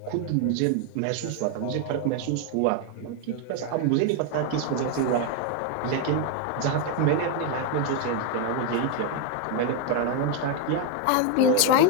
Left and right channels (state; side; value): different; both; correlation 0.01